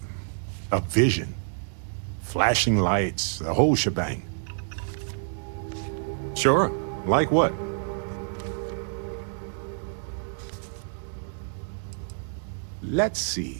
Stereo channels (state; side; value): silent; left; digital silence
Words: a vision. Flashing lights, the whole shebang. Sure, like what? Let's